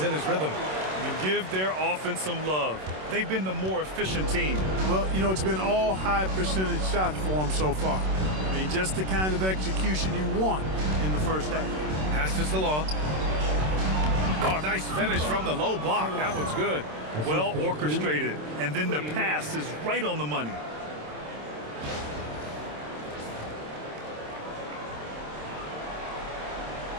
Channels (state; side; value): late; left; 27 ms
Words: in his rhythm. And give their offense some love. They've been the more efficient team. Well, you know, it's been all high percentage shots for them so far. I mean, just the kind of execution you want in the first half. Pass to Salon. Oh, nice finish from the low block. That one's good. Well orchestrated. And then the pass is right on the money.